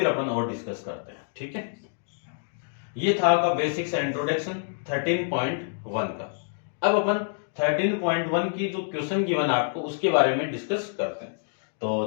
अपन और डिस्कस करते हैं, ठीक है। ये था आपका बेसिक्स इंट्रोडक्शन 13.1 का। अब अपन 13.1 की जो क्वेश्चन गिवन आपको उसके बारे में डिस्कस करते हैं। तो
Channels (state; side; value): silent; right; digital silence